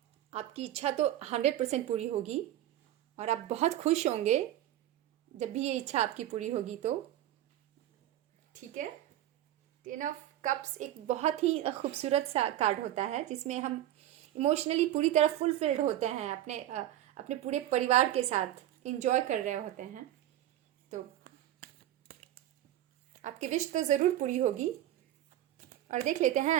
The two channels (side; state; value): left; quieter; 13.1 dB